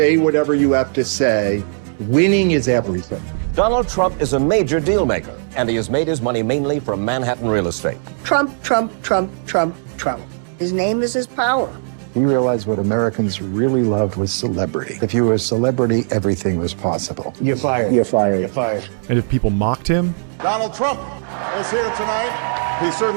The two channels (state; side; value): silent; left; 67 dB below the other